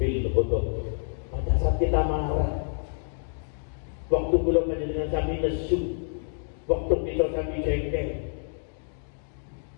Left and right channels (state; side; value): silent; right; digital silence